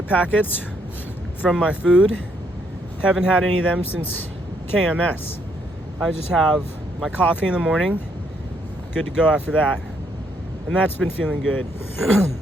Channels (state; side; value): normal; both; correlation 0.72